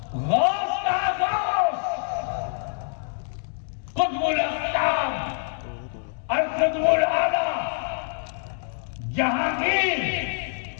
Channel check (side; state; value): right; silent; 61 dB below the other